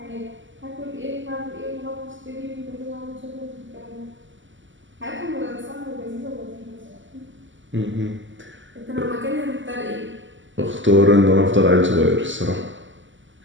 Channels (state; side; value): late; left; 0.55 ms